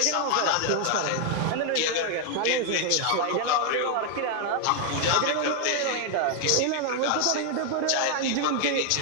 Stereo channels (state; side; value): different; both; correlation 0.00